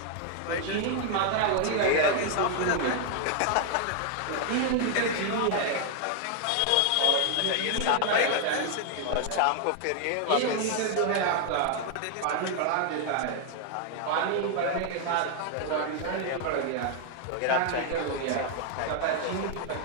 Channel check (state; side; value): different; both; correlation 0.00